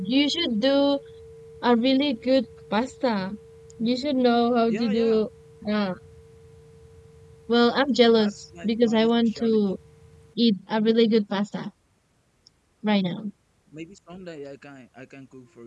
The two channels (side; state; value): both; identical; correlation 1.00